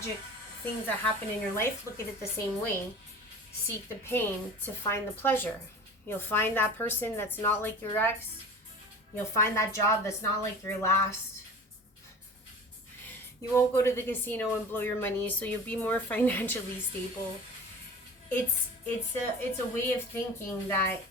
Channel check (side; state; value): both; normal; correlation 0.39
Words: things that happen in your life, look at it the same way. Seek the pain to find the pleasure. You'll find that person that's not like your ex. You'll find that job that's not like your last. You won't go to the casino and blow your money, so you'll be more financially stable. It's a way of thinking that